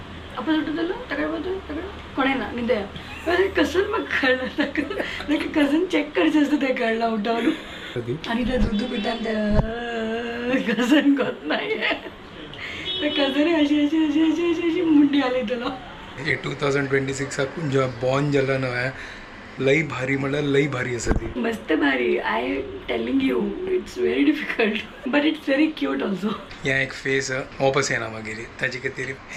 आपण सुटतलो ताकडे पळयतलो ताकडे कोणें ना न्हिदया कसं म्हाका कळना ताका कजन चॅक करचें आसता तें कळना उठोवन आणि त्या दूध पितान त्या कजन कोत नाही त्या कजने अशी अशी अशी अशी अशी अशी मुंडी आली तुला हे 2026 जेव्हा बॉर्न जाला न्हय लई भारी म्हणल्यार लई भारी आसा ती मस्त भारी I telling you it's very difficult but it's very cute also ह्या एक फेस वापस येना मागीर ताचे खातीर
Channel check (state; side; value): identical; both; correlation 1.00